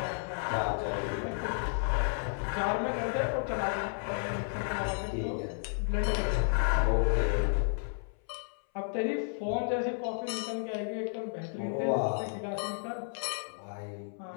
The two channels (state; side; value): silent; right; 56 dB below the other